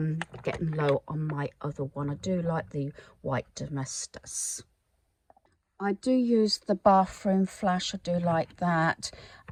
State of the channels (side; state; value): both; identical; correlation 1.00